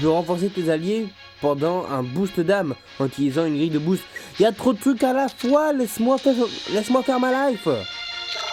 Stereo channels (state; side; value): identical; both; correlation 1.00